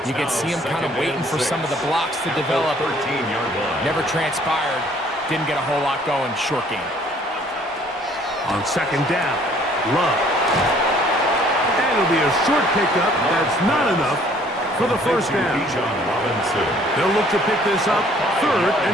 You could see him kind of waiting for some of the blocks to develop. Never transpired. Didn't get a whole lot going. Short game. On second down, Love. And it'll be a short pickup. That's not enough for the first down. They'll look to pick this up, third and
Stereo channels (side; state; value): both; normal; correlation 0.59